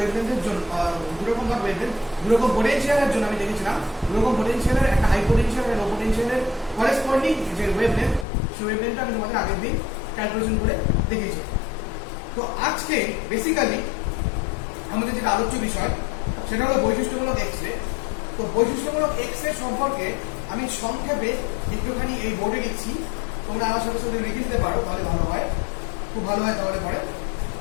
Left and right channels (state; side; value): drops out; right; at 8.2 s